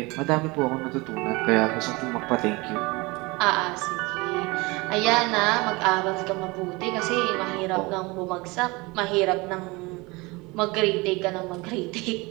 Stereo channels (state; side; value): quieter; left; 24.4 dB